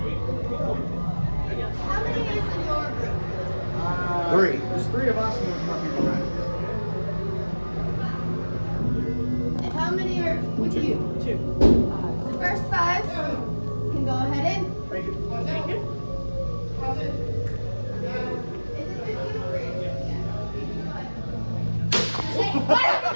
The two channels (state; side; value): inverted; both; correlation -1.00